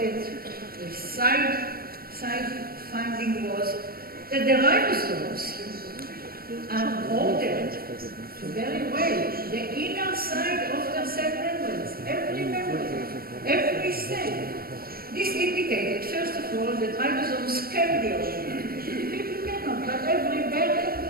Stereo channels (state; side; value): late; left; 0.44 ms